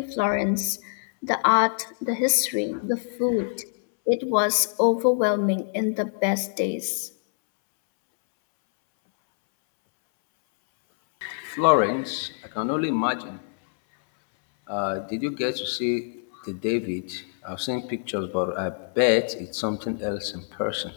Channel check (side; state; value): right; silent; 61 dB below the other